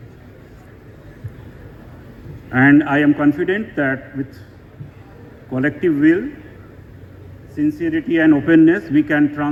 And I am confident that with collective will, sincerity and openness, we can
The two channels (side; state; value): both; identical; correlation 1.00